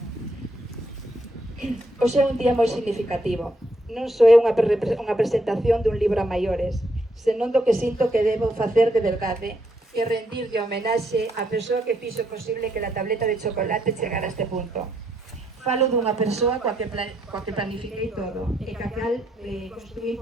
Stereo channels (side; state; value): both; normal; correlation 0.75